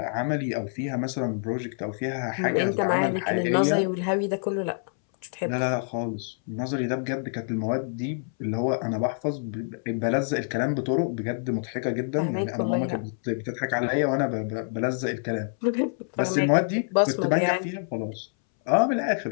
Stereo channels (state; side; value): silent; right; 60 dB below the other